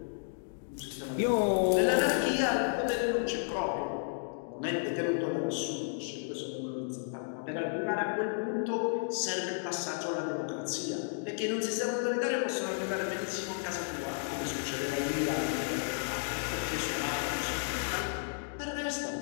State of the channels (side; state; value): right; silent; digital silence